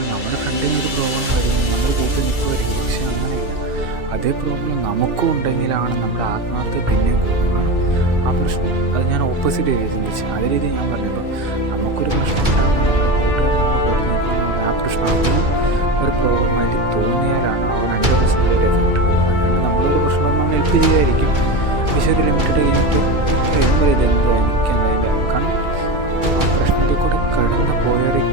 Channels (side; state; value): left; late; 2.3 ms